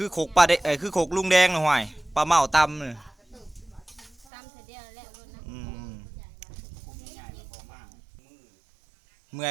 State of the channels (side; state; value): left; drops out; at 4.2 s